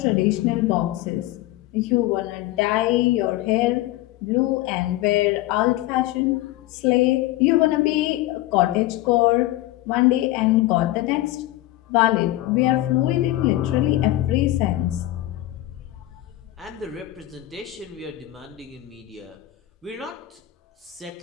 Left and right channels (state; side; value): quieter; right; 16.4 dB